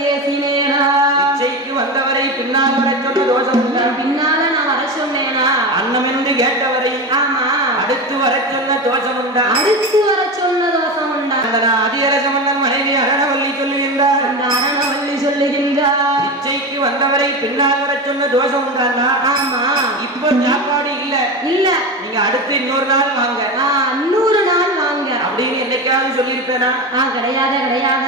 ஏசினேனா இச்சைக்கு வந்தவரை பின்னால் வர சொன்ன தோஷம் உண்டா? பின்னால நான் வர சொன்னேனா? அன்னம் என்று கேட்டவரை ஆமா அடுத்து வர சொன்ன தோஷம் உண்டா? அடுத்து வர சொன்ன தோஷம் உண்டா? அந்த அதிகரச மன்னன் மனைவி அரணவல்லி சொல்லுகின்றார். அந்த அரணவல்லி சொல்லுகின்றார் இச்சைக்கு வந்தவரை பின்னால் வர சொன்ன தோஷம் உண்டானா? ஆமா இப்போ சாப்பாடு இல்ல இல்ல நீங்க அடுத்து இன்னொரு நாள் வாங்க, இன்னொரு நாள் வாங்க அப்படின்னு என்னைக்காவது சொல்லியிருப்பேனா? கிடையாது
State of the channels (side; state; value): both; normal; correlation 0.22